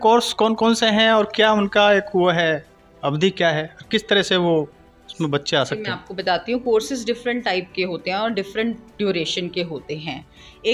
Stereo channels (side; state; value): both; identical; correlation 1.00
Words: कोर्स कौन कौन से हैं और क्या उनका एक वो है, अवधि क्या है, किस तरह से वो उसमें बच्चे आ मैं सकते हैं? आपको बताती हूँ। कोर्सेज डिफरेंट टाइप के होते हैं और डिफरेंट ड्यूरेशन के होते हैं।